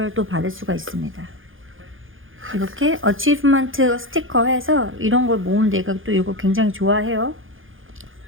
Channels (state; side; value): late; left; 0.58 ms